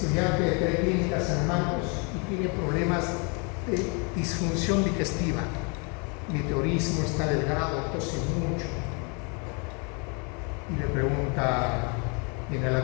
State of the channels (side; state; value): right; quieter; 34.5 dB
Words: de Preclínica San Marcos, y tiene problemas de disfunción digestiva, meteorismo, está delgado, tose mucho, y le pregunta, viene a la